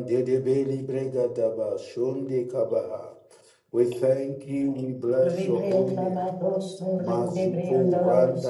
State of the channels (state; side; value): identical; both; correlation 1.00